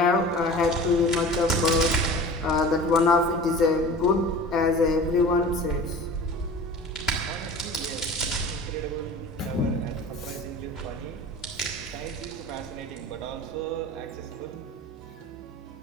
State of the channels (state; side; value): normal; both; correlation 0.38